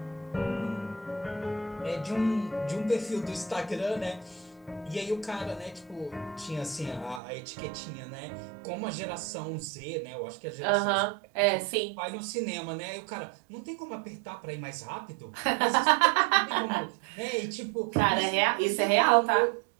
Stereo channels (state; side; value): drops out; left; at 7.2 s